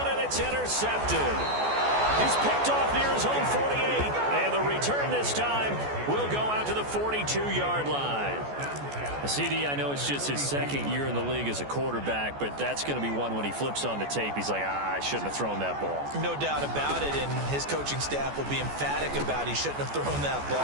and it's intercepted. He's picked off near his own 48. And the return this time will go out to the 42-yard line. CD, I know it's just his 2nd year in the league as a quarterback, but that's going to be one when he flips on the tape. He's like, I shouldn't have thrown that ball. No doubt about it, and his coaching staff will be emphatic about he shouldn't have thrown that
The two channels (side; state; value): left; late; 14 ms